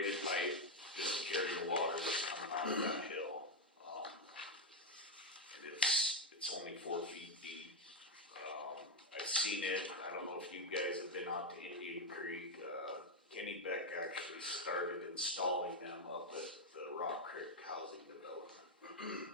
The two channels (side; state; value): both; normal; correlation 0.04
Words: pipe just to carry the water that's coming out of that hill. And it's only 4 feet deep. I've seen it. I don't know if you guys have been out to Indian Creek. Kenny Beck actually started installing them up at the Rock Creek Housing Development